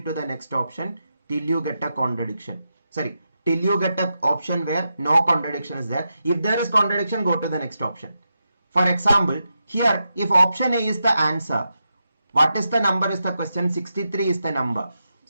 to the next option till you get a contradiction. Sorry, till you get an option where no contradiction is there. If there is contradiction, go to the next option. For example, here if option A is the answer, what is the number is the question? 63 is the number.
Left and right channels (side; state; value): both; inverted; correlation -0.87